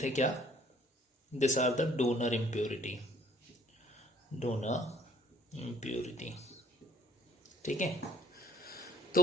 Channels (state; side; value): normal; both; correlation 0.61